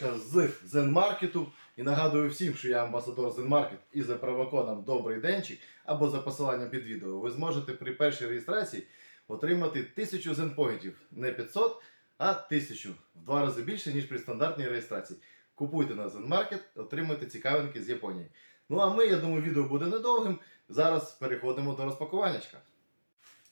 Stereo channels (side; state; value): both; inverted; correlation -1.00